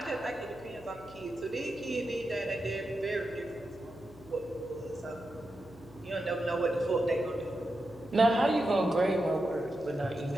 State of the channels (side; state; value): left; noise; hum, 21 dB below the sound